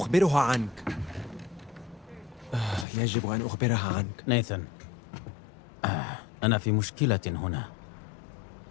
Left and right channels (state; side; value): drops out; right; at 2.9 s